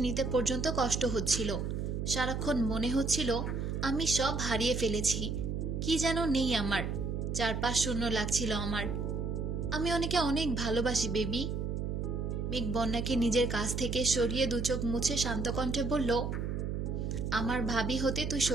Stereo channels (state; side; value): noise; right; hum, 2 dB below the sound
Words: নিতে পর্যন্ত কষ্ট হচ্ছিল। সারাক্ষণ মনে হচ্ছিল আমি সব হারিয়ে ফেলেছি, কি যেন নেই আমার, চারপাশ শূন্য লাগছিল আমার। আমি ওনাকে অনেক ভালোবাসি বেবি। মেঘ বন্যাকে নিজের কাছ থেকে সরিয়ে দু চোখ মুছে শান্ত কণ্ঠে বলল, আমার ভাবি হতে তুই